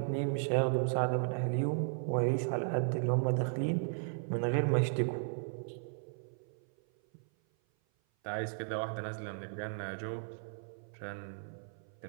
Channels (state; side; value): silent; left; 54 dB below the other